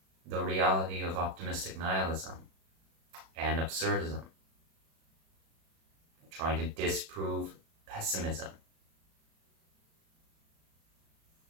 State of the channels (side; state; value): left; late; 36 ms